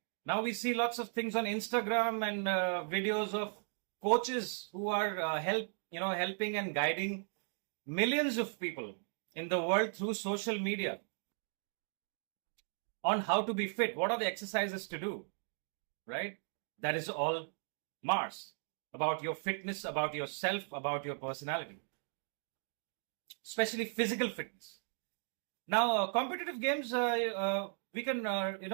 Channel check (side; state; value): left; silent; 53 dB below the other